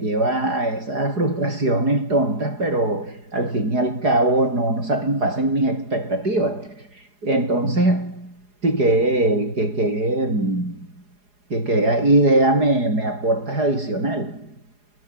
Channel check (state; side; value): late; left; 4.8 ms